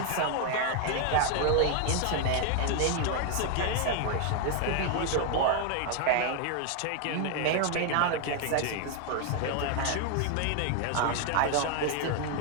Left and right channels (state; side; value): different; both; correlation 0.00